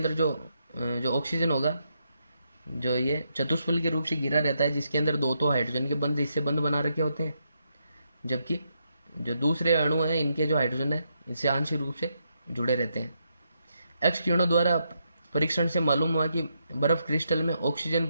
जो ऑक्सीजन होगा जो ये चतुष्फल के रूप से घिरा रहता है, जिसके अंदर 2 तो हाइड्रोजन के बंध इससे बंध बना रखे होते हैं, जबकि जो दूसरे अणु हैं इनके जो हाइड्रोजन है इससे आंशिक रूप से जुड़े रहते हैं। एक्स किरणों द्वारा परीक्षण से मालूम हुआ कि बर्फ क्रिस्टल में ऑक्सीजन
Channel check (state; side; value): inverted; both; correlation -0.80